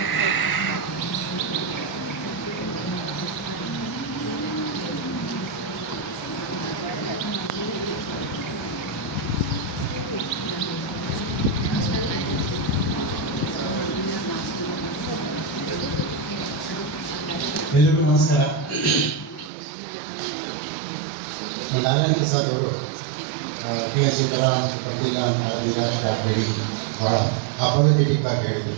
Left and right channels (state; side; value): drops out; left; at 19.5 s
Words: ಎಲ್ಲರಿಗೂ ನಮಸ್ಕಾರ. ನಾರಾಯಣ ಪ್ರಸಾದ್ ಅವರು PSC ಪತ್ರಿಕಾ ಸ್ಟಾರ್ಟ್ ಹೇಳಿ ಬಹಳ ಅಪೋಲಜೆಟಿಕ್ ಆಗಿ ಹೇಳಿದರು.